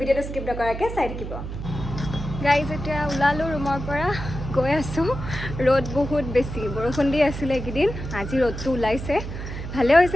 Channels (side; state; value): right; noise; hum, 7 dB below the sound